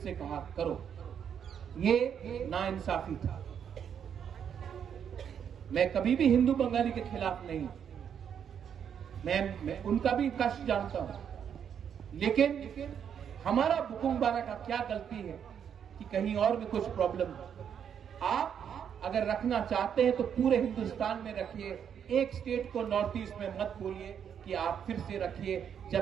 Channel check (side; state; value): left; quieter; 8.2 dB